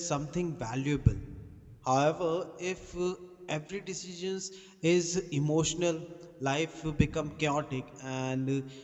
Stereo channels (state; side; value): identical; both; correlation 1.00